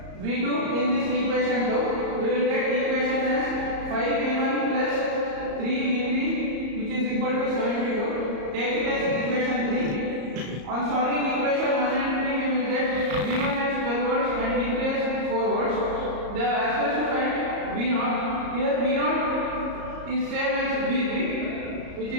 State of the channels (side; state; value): left; late; 34 ms